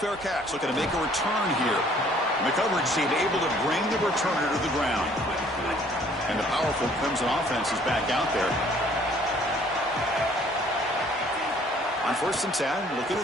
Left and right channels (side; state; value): both; normal; correlation 0.58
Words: catch. Looking to make a return here. And the coverage team able to bring the returner to the ground. And the powerful Clemson offense is back out there. On 1st and 10, looking